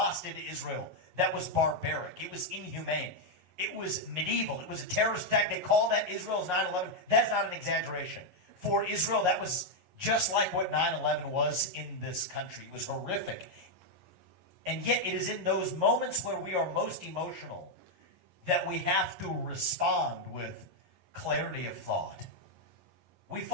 did to Israel, that was barbaric. It was inhumane. It was medieval. It was a terrorist attack. They call that Israel's 9/11. That's not an exaggeration. For Israel, that was just like what 9/11 was in this country. It was horrific. And yet it is in those moments where we are most emotional that we have to respond with clarity of thought. We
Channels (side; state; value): left; late; 11 ms